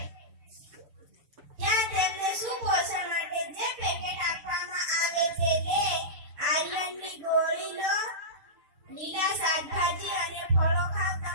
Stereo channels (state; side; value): late; left; 6.9 ms